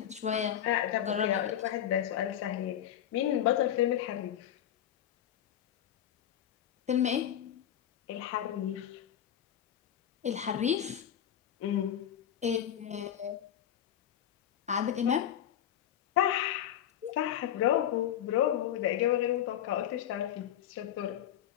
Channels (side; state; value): right; quieter; 10.5 dB